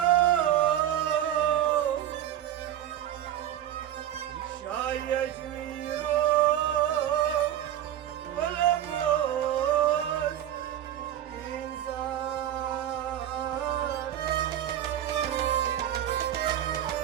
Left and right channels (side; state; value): left; quieter; 11.3 dB